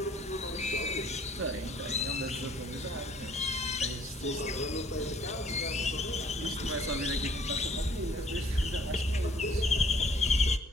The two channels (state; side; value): normal; both; correlation 0.58